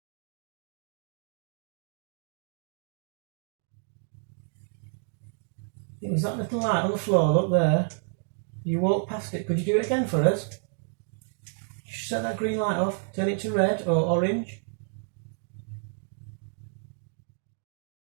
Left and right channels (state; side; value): silent; left; digital silence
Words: It was that little light on the floor, look there. You walk past it. Could you do it again for us? Just set that green light off, turn it to red or orange.